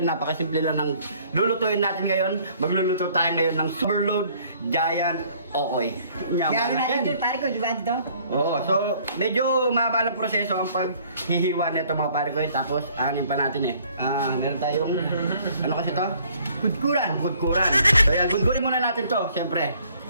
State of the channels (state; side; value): inverted; both; correlation -0.59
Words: napakasimple lang ng lulutuin natin ngayon. Magluluto tayo ngayon ng Overload Giant Okoy. Kaya natin ito, pare ko, di ba ito? Oo, so medyo mahaba ng proseso ang paghihiwa nito mga pare ko. Tapos anin pa natin meron tayong, ano kasi to? Gudkuran. So yan, gudkurin muna natin to, syempre.